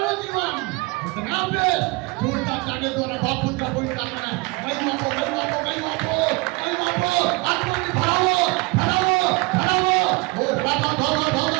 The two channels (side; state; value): left; quieter; 26.3 dB